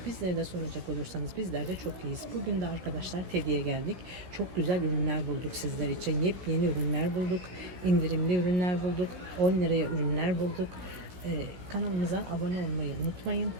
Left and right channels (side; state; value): left; late; 16 ms